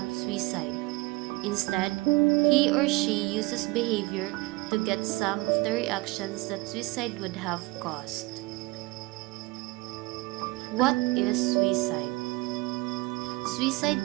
suicide. Instead, he or she uses behavior to get some of the reactions that suicide would have caused. What is suicide?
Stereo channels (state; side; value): quieter; left; 22.6 dB